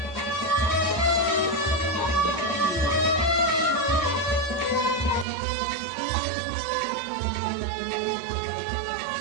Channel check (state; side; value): drops out; left; at 5.2 s